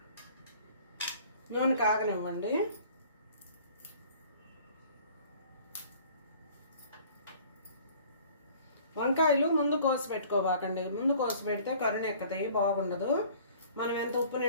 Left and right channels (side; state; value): both; inverted; correlation -0.51